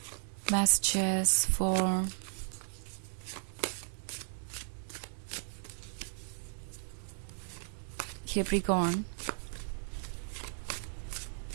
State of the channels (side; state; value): left; silent; digital silence